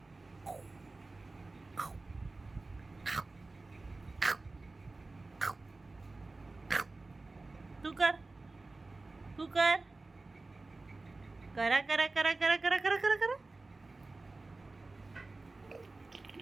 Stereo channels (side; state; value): left; quieter; 3.3 dB